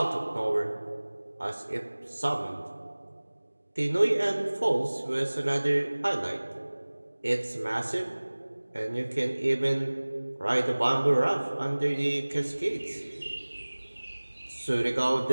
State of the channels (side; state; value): both; inverted; correlation -1.00